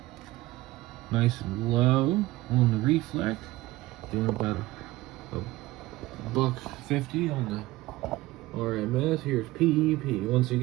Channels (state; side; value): quieter; left; 18.1 dB